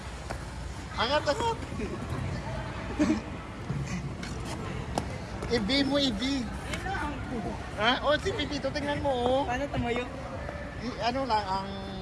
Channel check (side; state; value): both; identical; correlation 1.00